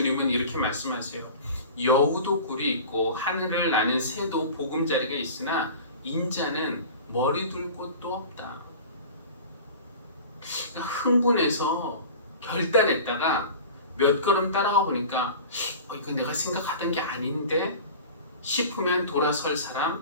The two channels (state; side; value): inverted; both; correlation -0.38